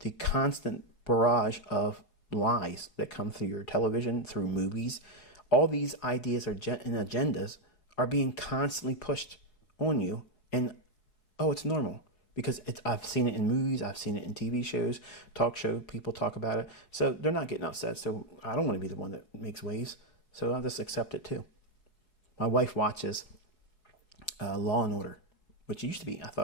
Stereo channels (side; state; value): right; late; 4.8 ms